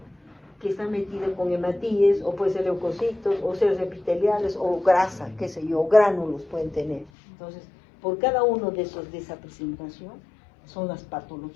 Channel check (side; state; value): right; drops out; at 7.1 s